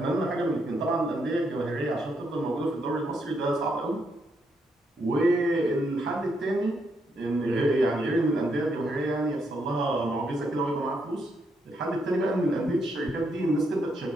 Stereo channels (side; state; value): both; normal; correlation 0.77